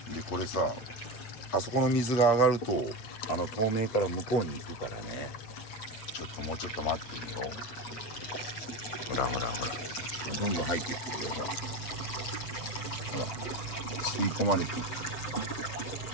でこれさ、あそこの水が上がると透明から向こうに行くからね。もうちょっと待ってみよう。ほらどんどん入っていってるよ。ほら吸い込まれていく。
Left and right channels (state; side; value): late; right; 8.0 ms